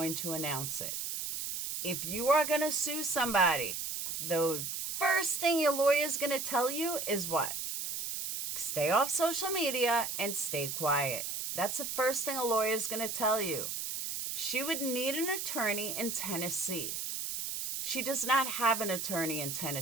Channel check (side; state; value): right; noise; hiss, 4 dB below the sound